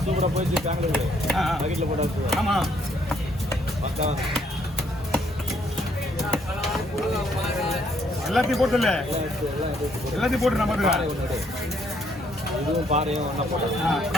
சூப்பராக போயிடுச்சு பெங்களூரு. பக்கெட்டில் போட்டாச்சு. ஆமாம் எல்லாத்தையும் போட்டுல எல்லாத்தையும் போட்டு நம்ம இதுவும் பாறையும் ஒன்றா போட்டோம்.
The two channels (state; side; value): normal; both; correlation 0.69